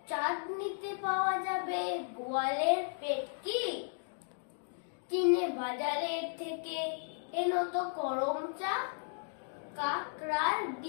চাঁদনিতে পাওয়া যাবে বোয়ালের পেটকি, চিনে বাজারের থেকে এনো তো গরম চা, কাকড়ার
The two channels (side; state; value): right; silent; digital silence